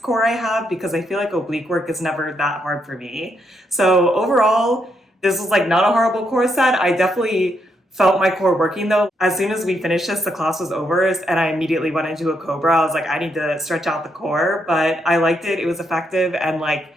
core I have because I feel like oblique work is never that hard for me. So overall, this was like not a horrible core set. I definitely felt my core working though. As soon as we finished this, the class was over and I immediately went into a cobra. I was like, I need to stretch out the core, but I liked it. It was effective. And like,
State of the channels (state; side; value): normal; both; correlation 0.78